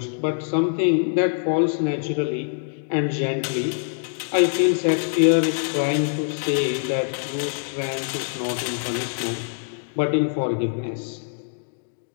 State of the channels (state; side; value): silent; right; digital silence